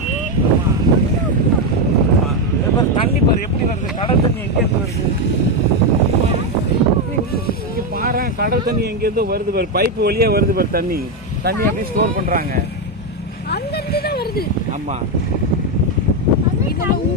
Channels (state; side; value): normal; both; correlation 0.07